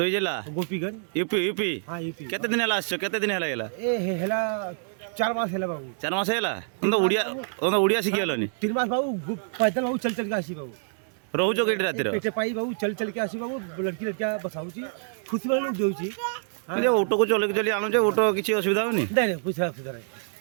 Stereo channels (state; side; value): silent; left; digital silence